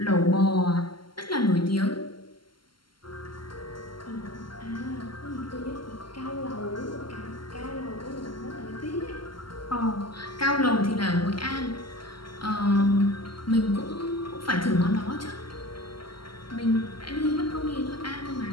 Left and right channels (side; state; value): right; late; 0.72 ms